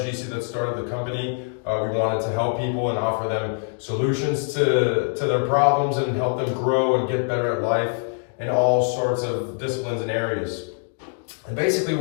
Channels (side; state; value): right; silent; 61 dB below the other